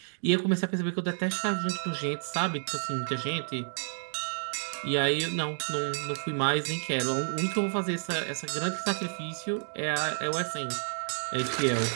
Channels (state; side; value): silent; left; digital silence